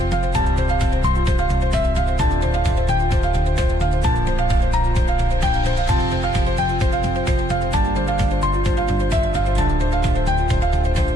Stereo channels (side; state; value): both; normal; correlation 0.72